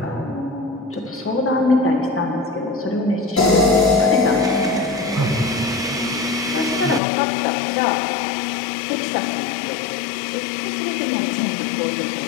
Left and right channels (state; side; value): drops out; right; at 7.0 s